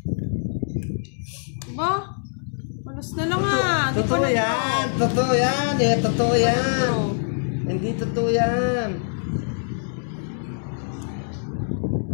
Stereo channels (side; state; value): right; silent; 63 dB below the other